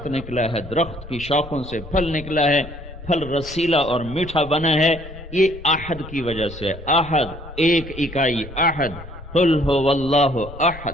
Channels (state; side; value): normal; both; correlation 0.62